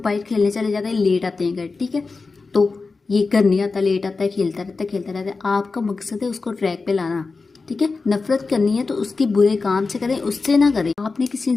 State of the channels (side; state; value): right; quieter; 4.1 dB